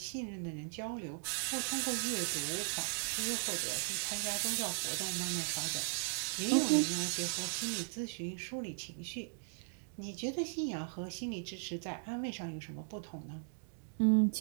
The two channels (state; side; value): silent; left; digital silence